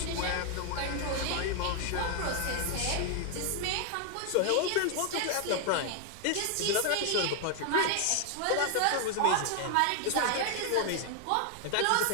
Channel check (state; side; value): different; both; correlation 0.00